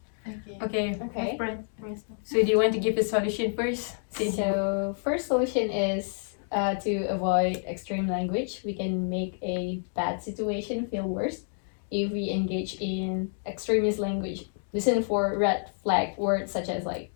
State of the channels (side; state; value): right; silent; digital silence